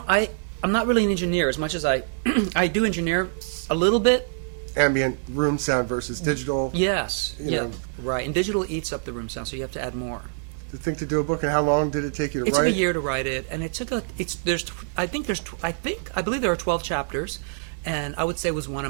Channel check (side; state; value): left; silent; digital silence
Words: I'm not really an engineer as much as I do engineer a little bit. Ambient room sound versus digital. Yes, right. And digital eats up the room sound, so you have to add more. To think to do a book, and how long did it take you to write? It took a year to write it, and it took I believe there are 12 chapters, and I would say it was one